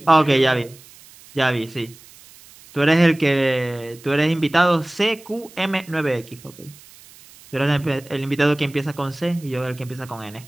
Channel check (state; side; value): noise; right; hiss, 23 dB below the sound